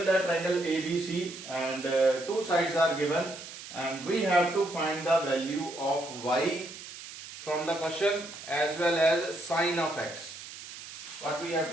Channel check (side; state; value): right; noise; hiss, 13 dB below the sound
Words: that triangle ABC and two sides are given and we have to find the value of y from the question as well as sine of x. What we have